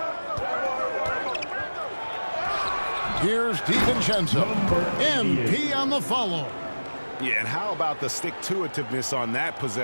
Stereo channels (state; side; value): inverted; both; correlation -1.00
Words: Here's DiVincenzo. MP on the follow. Yeah, and how about the stick-to-itiveness on that